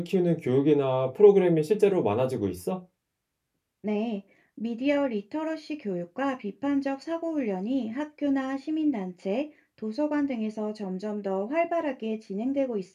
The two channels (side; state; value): both; identical; correlation 1.00